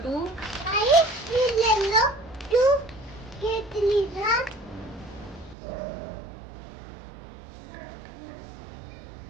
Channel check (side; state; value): left; drops out; at 5.6 s